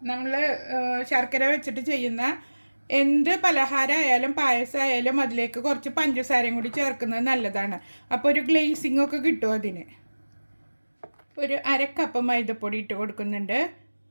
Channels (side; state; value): both; inverted; correlation -1.00